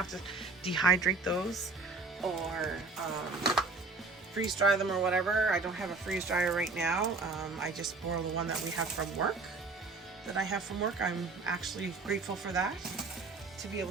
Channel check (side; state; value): left; quieter; 3.8 dB